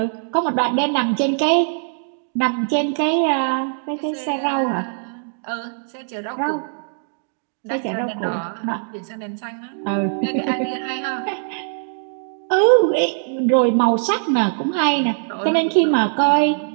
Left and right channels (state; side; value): silent; left; digital silence